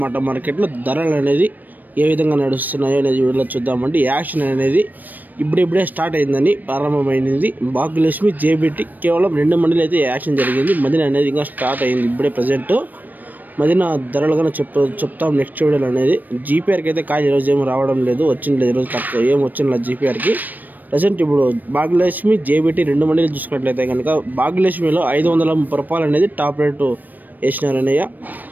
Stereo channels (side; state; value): left; late; 0.087 ms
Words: మార్కెట్లో ధరలు అనేది ఏ విధంగా నడుస్తున్నాయో అనేది వీడియోలో చూద్దామండి. యాక్షన్ అనేది ఇప్పుడిప్పుడే స్టార్ట్ అయిందని ప్రారంభమైంది. భాగ్యలక్ష్మి జేబీటీ కేవలం 2 మండీలు అయితే యాక్షన్ జరిగింది. మదిన అనేది ఇంకా స్టార్ట్ అయింది ఇప్పుడే ప్రజెంట్. మదిన ధరలుగానే చెప్తాం నెక్స్ట్ వీడియోలో అనేది. జీపీఆర్కి అయితే కాయ ఈరోజు ఏమి రావడం లేదు, వచ్చింది లేదు ఈరోజు, తక్కువ ఏం వచ్చింది జీపీఆర్కి ప్రజెంట్. ఇప్పుడు భాగ్యలక్ష్మి జేబీటీ 2 మండీలు చూసుకున్నట్లయితే కనుక భాగ్యలక్ష్మిలో 530 రూపాయలు అనేది టాప్ రేటు వేసినారనయ్య.